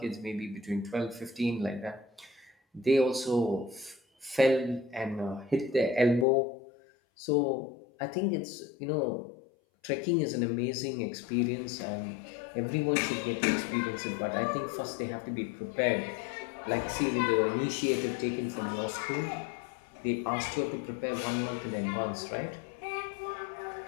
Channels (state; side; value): drops out; right; at 6.2 s